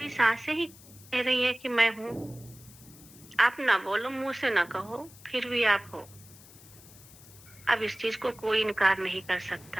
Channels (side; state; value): left; noise; hiss, 21 dB below the sound